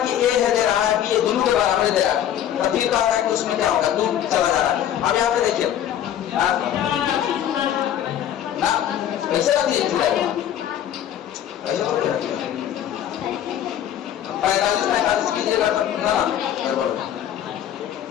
कि A है दे रहा है कि ये दोनों के बराबर दे रहा है, तो फिर कहता है कि उसमें क्या होगा? 2 चला जा रहा है। अब यहाँ पे देखिए ना कैसे रख लीजिए 45 कीजिएगा तब ना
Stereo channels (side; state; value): right; quieter; 10.6 dB